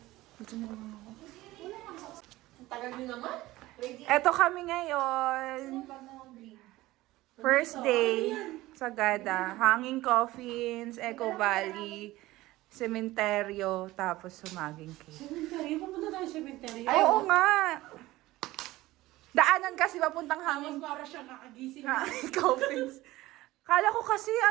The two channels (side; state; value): left; quieter; 17.9 dB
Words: Dito na lang ako. Ang tagal nyo naman. Eto kami ngayon. First day sa Gada. Hanging Coffins, Eco Valley, Sementeryo, tapos Sumaging Cave. Cemetery? Pupunta tayo sa cemetery. Ay, oo nga. Daanan kasi papuntang Hanging Para siya kakagising. Coffins. Kala ko kasi